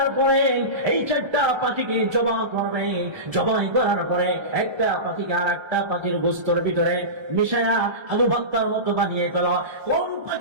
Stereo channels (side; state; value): left; late; 1.3 ms